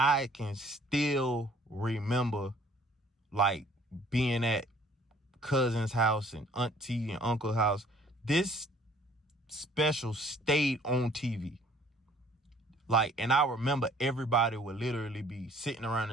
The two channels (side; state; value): both; normal; correlation 0.57